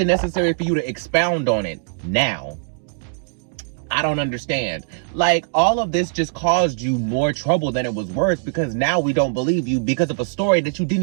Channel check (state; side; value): silent; left; digital silence